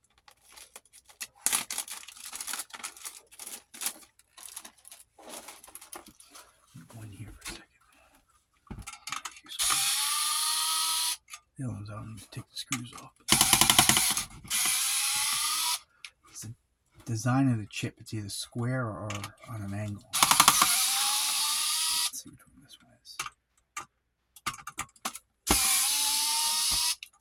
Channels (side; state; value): both; identical; correlation 1.00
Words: Go in here for a second. The other ones I don't need to take the screws off. It's the design of the chip. It's either square or on an angle. Let's see which one this one is.